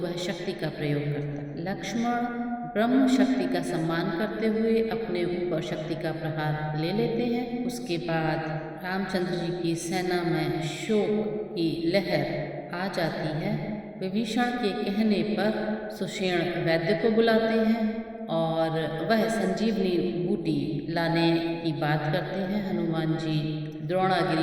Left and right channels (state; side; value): identical; both; correlation 1.00